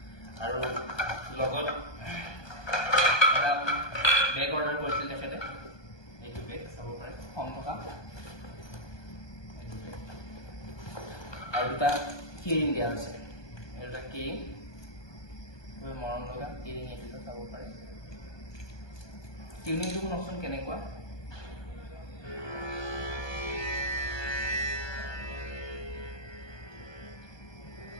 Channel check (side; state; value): right; late; 1.2 ms